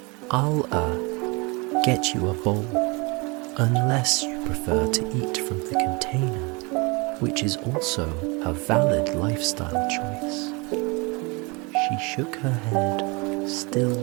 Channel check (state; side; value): quieter; left; 28.4 dB